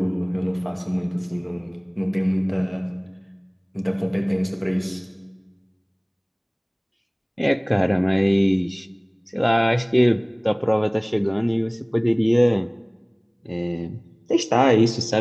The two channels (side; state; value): both; identical; correlation 1.00